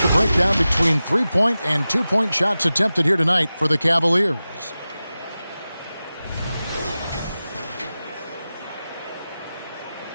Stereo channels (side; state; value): both; inverted; correlation -0.95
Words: breakdown between three-point and two-point shots attempted here tonight for the Cavaliers.